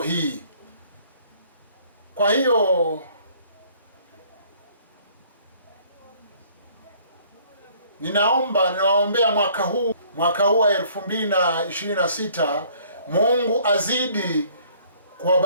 hii. Kwa hiyo ninawaombea mwaka huu wa 2026, Mungu azidi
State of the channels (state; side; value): inverted; both; correlation -0.59